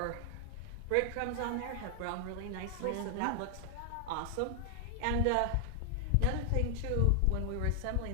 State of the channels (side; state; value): both; different; correlation 0.00